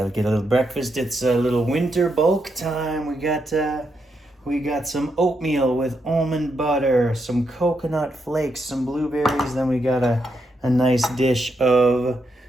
get a little breakfast. It's a little winter bulk time. We got some oatmeal with almond butter, some coconut flakes, some blueberries. Then we got a nice dish of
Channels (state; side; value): normal; both; correlation 0.81